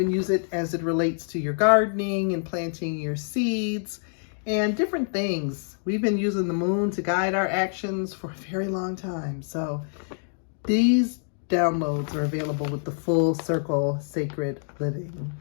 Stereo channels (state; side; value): silent; right; digital silence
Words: use it as it relates to your gardening and planting your seeds and different things. We've been using the moon to guide our actions for a very long time. So these downloads are available with the Full Circle Sacred Living.